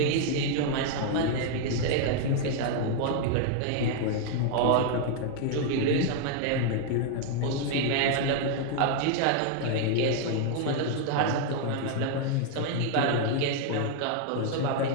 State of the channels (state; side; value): different; both; correlation 0.00